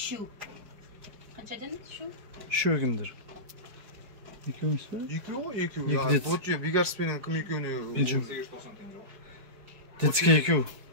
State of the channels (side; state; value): left; late; 4.6 ms